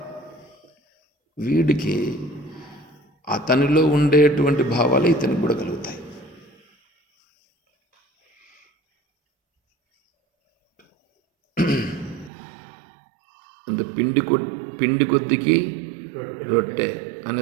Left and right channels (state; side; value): drops out; left; at 12.3 s